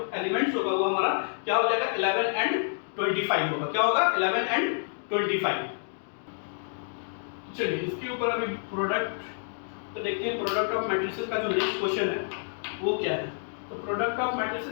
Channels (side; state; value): right; silent; digital silence